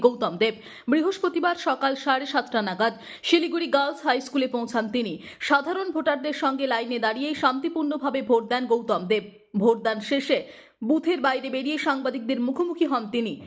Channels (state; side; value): identical; both; correlation 1.00